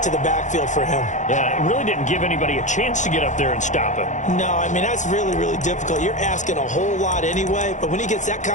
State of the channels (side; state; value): right; late; 0.35 ms